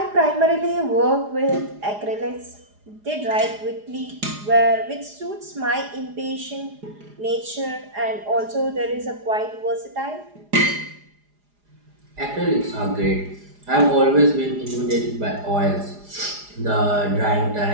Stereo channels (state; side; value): late; left; 4.9 ms